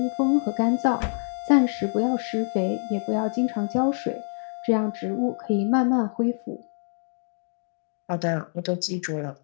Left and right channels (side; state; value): right; silent; digital silence